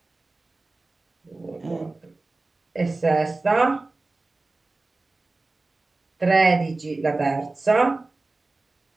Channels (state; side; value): quieter; left; 3.3 dB